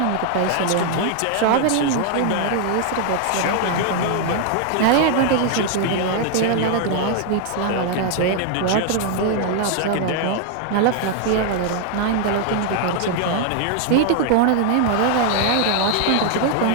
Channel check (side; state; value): both; different; correlation 0.00